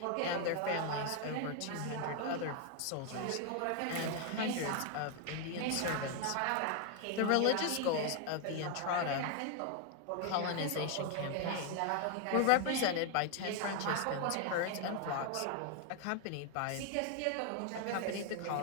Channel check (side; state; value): both; different; correlation 0.00